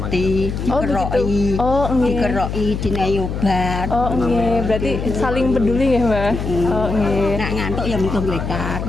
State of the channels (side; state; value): left; noise; hum, 4 dB below the sound